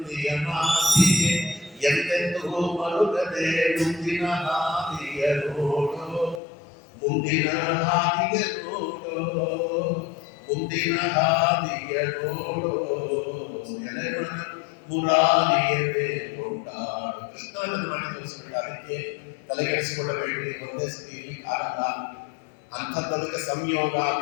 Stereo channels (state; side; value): drops out; right; at 6.4 s